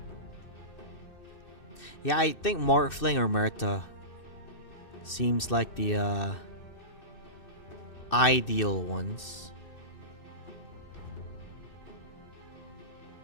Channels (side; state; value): right; late; 2.6 ms